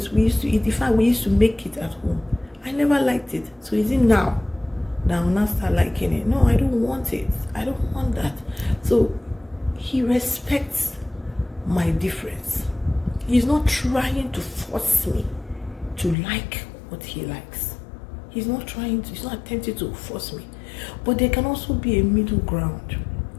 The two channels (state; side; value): drops out; right; at 16.2 s